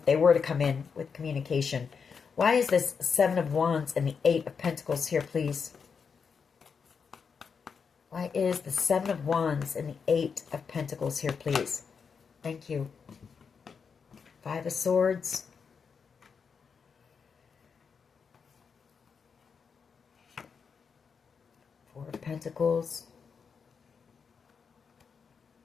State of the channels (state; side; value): quieter; right; 6.0 dB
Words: they were to come in with communication. Why is this Seven of Wands and the Eight of Pentacles here, please? Why is the Seven of Wands and the Eight of Pentacles here, please? Thank you. Five of Swords. Four of Pentacles.